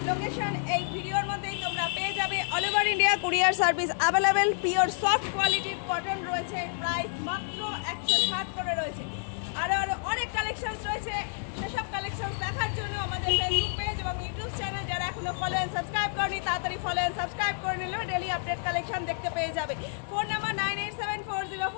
লোকেশন এই ভিডিওর মধ্যেই তোমরা পেয়ে যাবে। All over India courier service available. Pure soft কোয়ালিটির কটন রয়েছে, প্রাইস মাত্র 160 করে রয়েছে। আরও অনেক কালেকশনস রয়েছে, সেসব কালেকশনস দেখার জন্য আমাদের ফেসবুক পেজ এবং ইউটিউব চ্যানেল যারা এখনো ফলো অ্যান্ড সাবস্ক্রাইব করনি তাড়াতাড়ি ফলো অ্যান্ড সাবস্ক্রাইব করে নিলে ডেলি আপডেট কালেকশন দেখতে পেয়ে যাবে। Phone number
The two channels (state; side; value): silent; right; digital silence